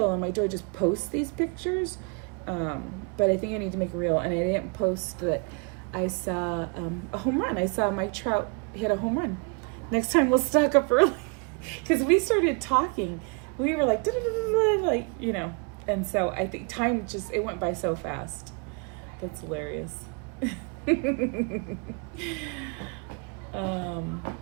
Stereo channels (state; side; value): quieter; left; 35.2 dB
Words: and my joy just posts these pictures. But I think I need to make a reel, and I didn't post that I saw a home run. I saw Mike Trout hit a home run. Next time we'll stock up early, because we started talking. We were like, like, you know, and so I think time just, it went by so fast. That's hilarious. You